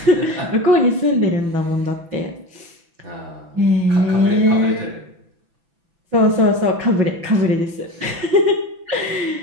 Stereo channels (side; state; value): left; late; 6.0 ms